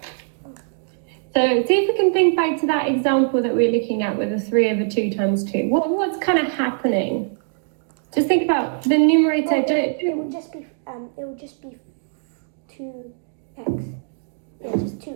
So see if we can think back to that example that we were looking at with the 3 over 2 times 2. What's kind of happening? Just think about the numerator. It will just be 2x. Yeah, just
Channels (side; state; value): left; silent; digital silence